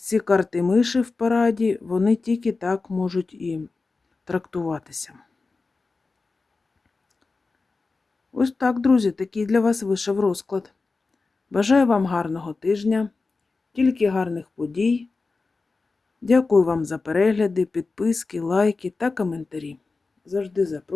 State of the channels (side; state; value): right; quieter; 3.9 dB